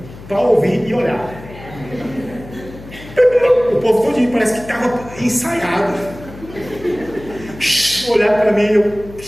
para ouvir e olhar. O povo todinho parece que estava ensaiado. Olhar para mim,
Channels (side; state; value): left; noise; hum, 17 dB below the sound